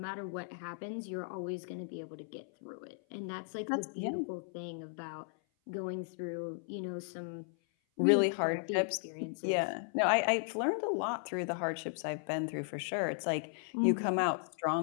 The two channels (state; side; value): silent; right; 54 dB below the other